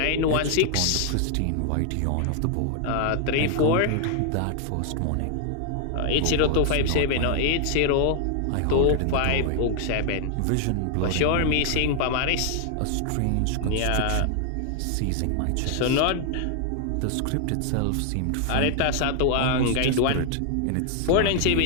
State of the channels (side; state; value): both; different; correlation 0.00